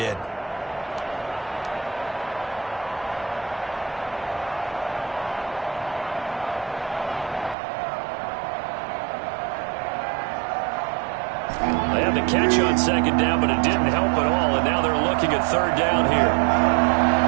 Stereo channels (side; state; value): left; drops out; at 7.6 s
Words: They had the catch on second down, but it didn't help at all, and now they're looking at third down here.